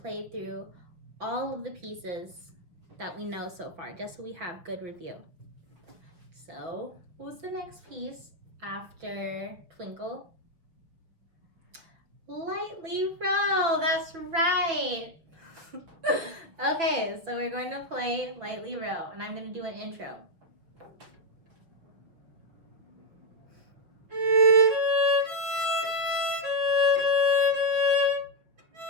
through all of the pieces that we know so far, just so we have good review. So, what's the next piece after Twinkle? Lightly Row, that's right. Okay, so we're going to play Lightly Row, and I'm going to do an intro.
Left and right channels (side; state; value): left; late; 6.3 ms